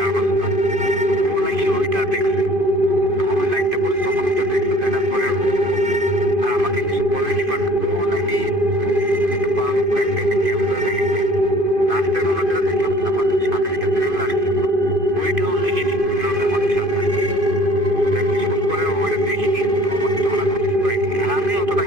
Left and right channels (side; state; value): left; late; 2.5 ms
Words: না। ও নাকি ওইটা দেখছে, যখন ওই লাইটটা পড়ছে তখন ওইটা দেখছে, দেখার পরে ও আর আমাকে কিছু বলেনি, বাট ও নাকি একটা পাওয়ার উপরে একটা ক্যামেরা দেখেছে। রাস্তায় আমরা যেটা দেখলাম আমাদের সাথে একটা ট্রেভেল আসছিল, ওইটাও দেখিনি, ওইটাও আমাদের সাথে আসছে। কিছুক্ষণ পরে ওইটা দেখিনি, আমাকে তখন আর নোটিস করিনি, আর আমি অতটা